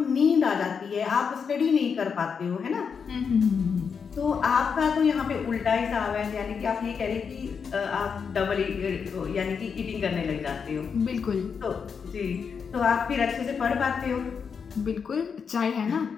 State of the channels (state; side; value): quieter; right; 6.2 dB